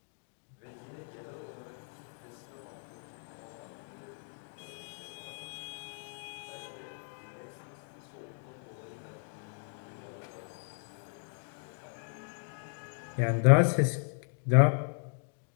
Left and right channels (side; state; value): right; silent; 54 dB below the other